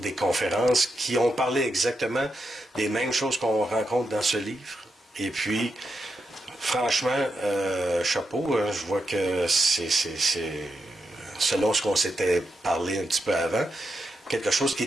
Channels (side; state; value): both; normal; correlation 0.85